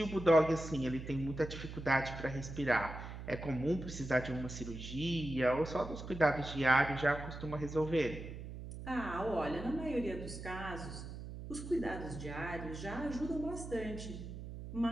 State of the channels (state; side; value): noise; right; hum, 10 dB below the sound